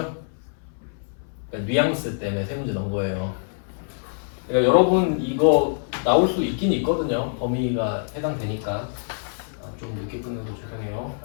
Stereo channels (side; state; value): right; silent; 62 dB below the other